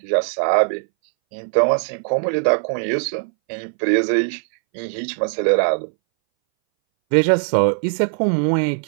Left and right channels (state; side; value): silent; left; 62 dB below the other